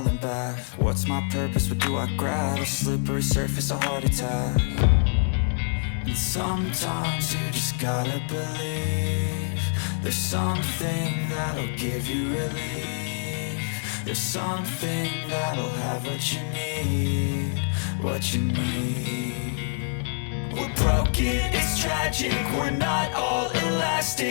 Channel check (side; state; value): right; silent; digital silence